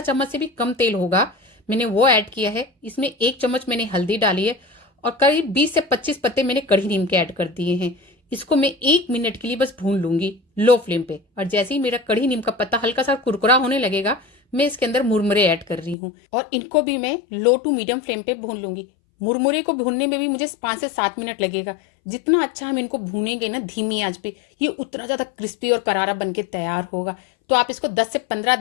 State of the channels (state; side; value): drops out; right; at 16.0 s